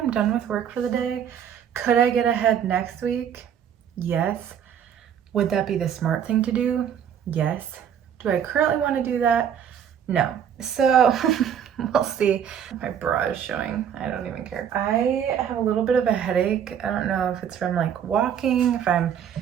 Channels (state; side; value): quieter; left; 8.7 dB